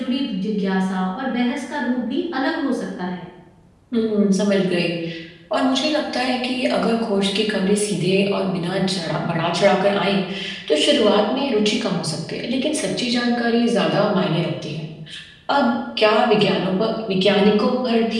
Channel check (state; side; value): identical; both; correlation 1.00